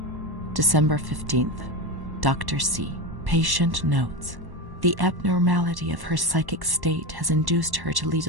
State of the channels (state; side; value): late; left; 1.1 ms